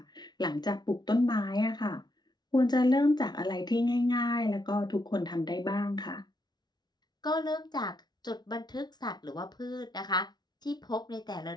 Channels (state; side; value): late; right; 0.20 ms